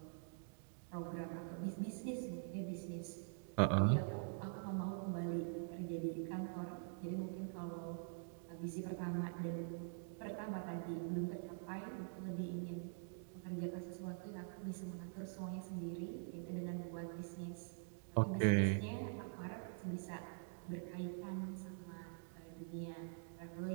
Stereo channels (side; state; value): left; silent; digital silence